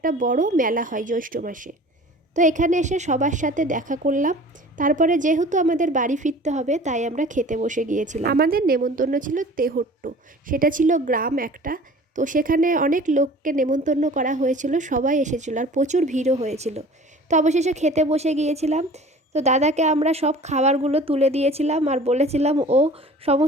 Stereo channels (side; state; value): both; normal; correlation 0.44